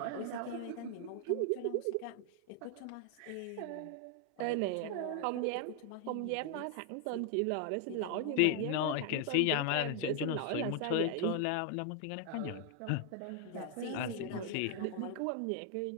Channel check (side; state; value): both; different; correlation 0.00